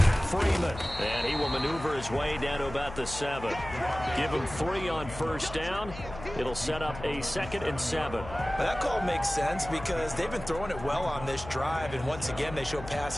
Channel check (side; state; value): left; noise; hum, 12 dB below the sound